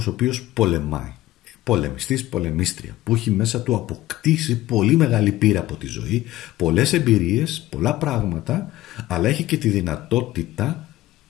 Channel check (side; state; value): right; quieter; 15.9 dB